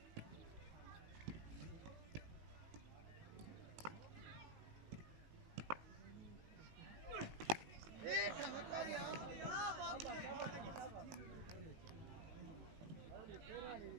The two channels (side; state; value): left; late; 18 ms